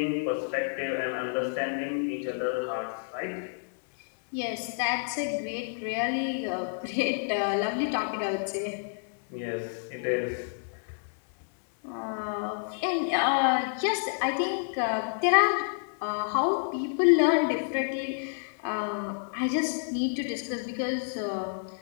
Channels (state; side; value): silent; right; digital silence